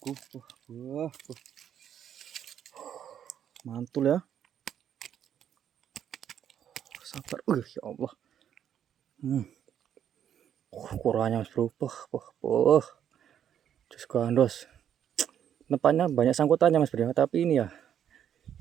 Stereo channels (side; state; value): left; quieter; 9.5 dB